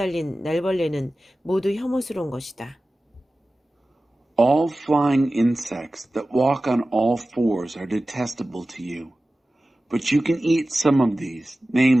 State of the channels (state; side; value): normal; both; correlation 0.96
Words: 날벌레는 모두 혐오스러운 것이다. All flying insects that walk on all fours are detestable to you. But you can eat some of these,